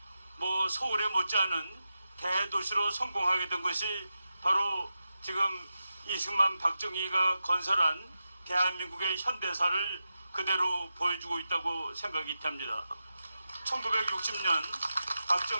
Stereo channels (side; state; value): both; inverted; correlation -0.90